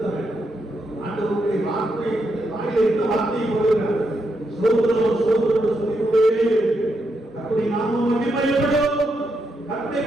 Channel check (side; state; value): both; normal; correlation 0.81